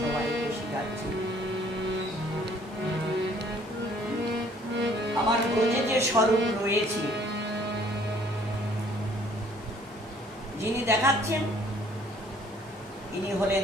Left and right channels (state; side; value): normal; both; correlation 0.58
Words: শেখাচ্ছেন। আমার ব্রজে যে স্বরূপ রয়েছে, যিনি দেখাচ্ছেন ইনি হলেন